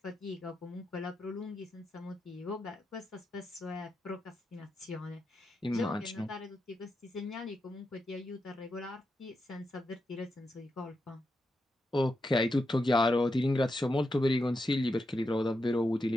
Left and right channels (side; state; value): both; normal; correlation 0.86